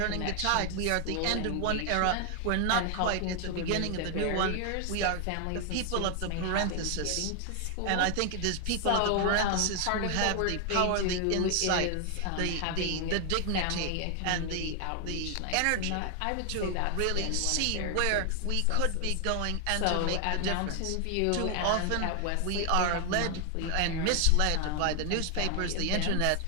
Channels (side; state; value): both; different; correlation 0.00